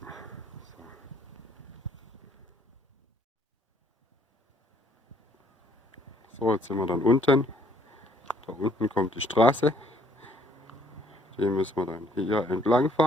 So, jetzt sind wir dann unten. Da unten kommt die Straße. Die müssen wir dann hier entlang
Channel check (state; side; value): normal; both; correlation 0.64